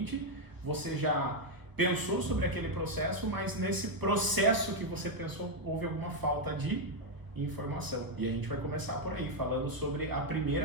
você já pensou sobre aquele processo, mas nesse processo que você pensou houve alguma falta de informação. E a gente vai começar por aí, falando sobre a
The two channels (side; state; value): left; late; 1.0 ms